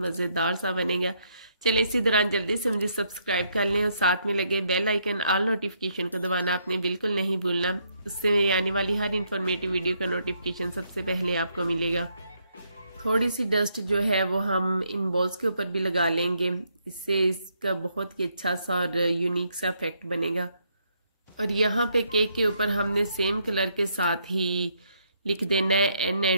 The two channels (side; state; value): both; inverted; correlation -0.74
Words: सा बनेगा। चलें इसी दौरान जल्दी से मुझे सब्सक्राइब कर लें और साथ में लगे बेल आइकन ऑल नोटिफिकेशन को दबाना आपने बिल्कुल नहीं भूलना। उससे मेरी आने वाली हर इन्फॉर्मेटिव वीडियो का नोटिफिकेशन सबसे पहले आपको मिलेगा। थोड़ी सी डस्ट जो है वो हम इन बॉल्स के ऊपर भी लगा लेंगे, इससे इसका बहुत ही अच्छा सा और यूनिक सा इफेक्ट बनेगा। और यहाँ पे केक के ऊपर हमने सेम कलर के साथ ही लिख देना है N